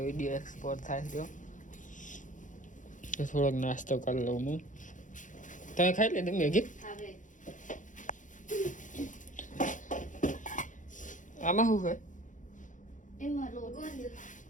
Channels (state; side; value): late; right; 0.37 ms